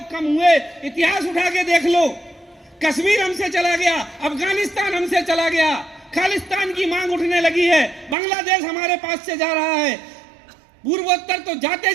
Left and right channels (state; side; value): drops out; left; at 8.2 s